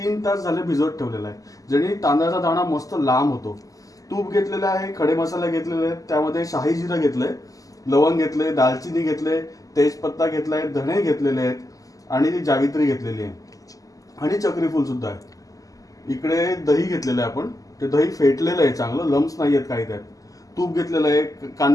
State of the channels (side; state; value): right; late; 0.17 ms